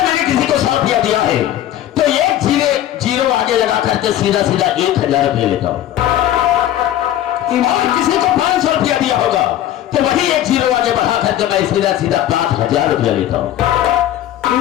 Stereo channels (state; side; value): quieter; right; 12.3 dB